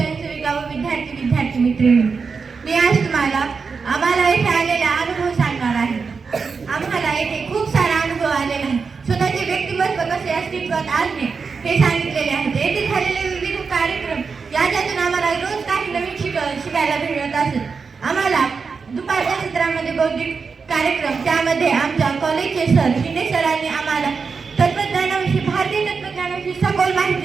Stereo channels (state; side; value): quieter; left; 5.1 dB